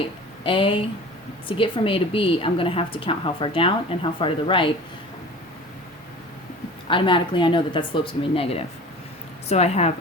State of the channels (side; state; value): both; normal; correlation 0.40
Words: to get from A to B, I'm going to have to count how far down and how far to the right. Automatically, I know that that slope's going to be negative. So